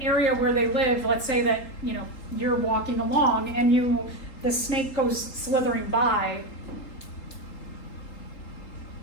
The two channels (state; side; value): late; right; 3.8 ms